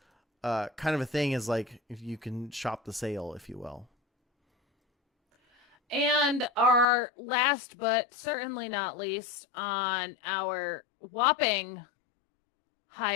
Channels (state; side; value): drops out; right; at 6.9 s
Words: kind of a thing, is like if you can shop the sale, if you will. And our last but certainly not least on our whopping